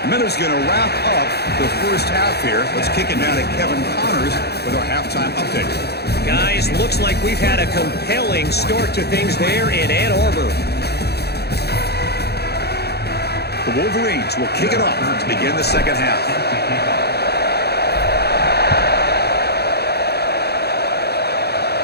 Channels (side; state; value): right; late; 0.47 ms